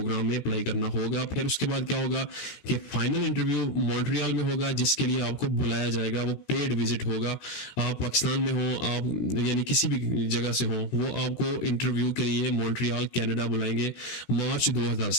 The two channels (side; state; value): right; late; 16 ms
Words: में अप्लाई करना होगा। फिर उसके बाद क्या होगा कि फाइनल इंटरव्यू मॉन्ट्रियल में होगा, जिसके लिए आपको बुलाया जाएगा, वो पेड विजिट होगा। आप पाकिस्तान में हो, आप यानी किसी भी जगह से हो, वो आपको इंटरव्यू के लिए मॉन्ट्रियल कनाडा बुलाएंगे मार्च